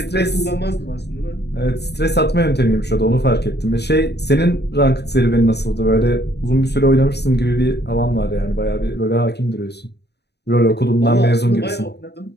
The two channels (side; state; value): right; late; 0.49 ms